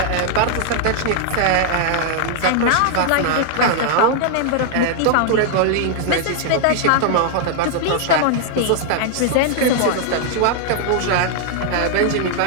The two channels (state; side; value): different; both; correlation -0.01